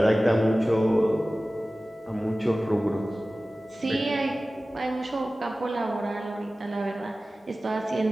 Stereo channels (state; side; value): normal; both; correlation 0.96